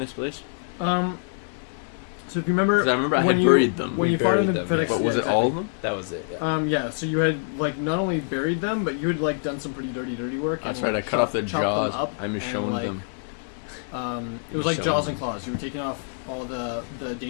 place? So if you remember, 'Cause I remember I when had you- buried them. when We you fought in the buried them, FedEx. But was yeah, it all of exactly. them? That was it. Yeah. Yeah, so you had not only buried them, but you had done some pretty dirty work. That's and, right. I cut off the chopped jaws. them up I'm and, showing them. It was like Showing jaws them. and claws. You were taking off all the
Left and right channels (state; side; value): silent; right; digital silence